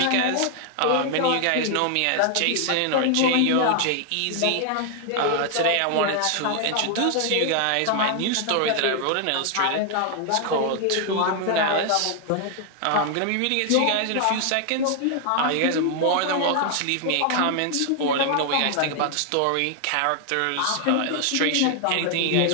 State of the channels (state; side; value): different; both; correlation 0.00